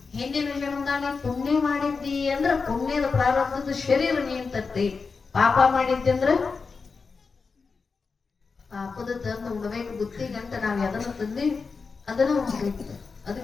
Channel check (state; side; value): quieter; right; 4.8 dB